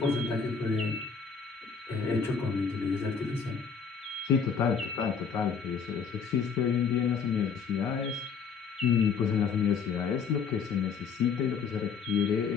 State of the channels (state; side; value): quieter; right; 6.0 dB